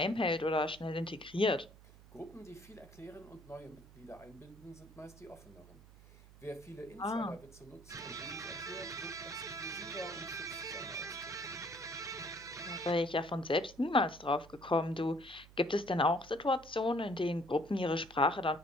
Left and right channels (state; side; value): noise; right; hum, 21 dB below the sound